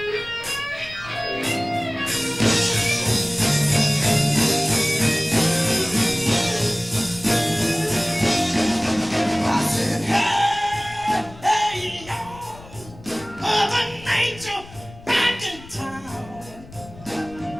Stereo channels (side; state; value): left; noise; rumble, 19 dB below the sound